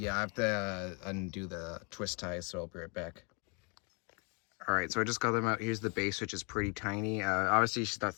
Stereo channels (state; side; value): quieter; right; 33.8 dB